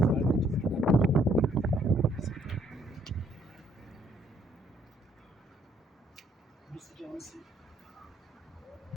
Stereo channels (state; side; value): normal; both; correlation 0.67